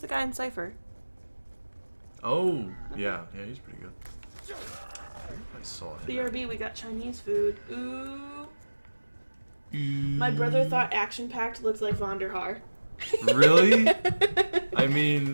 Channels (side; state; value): both; inverted; correlation -1.00